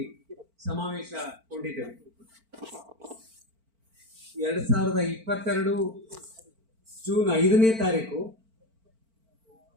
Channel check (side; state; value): left; late; 4.4 ms